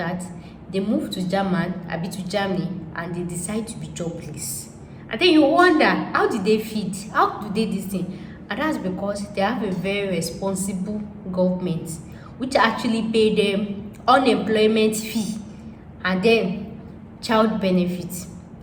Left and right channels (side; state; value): both; identical; correlation 1.00